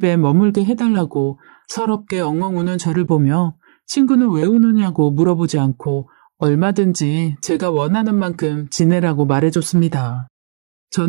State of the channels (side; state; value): left; silent; digital silence